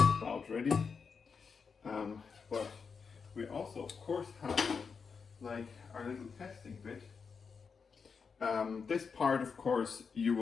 ready. But we also, of course, have like our little testing bit. This part, of course, you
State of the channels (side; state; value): right; quieter; 5.6 dB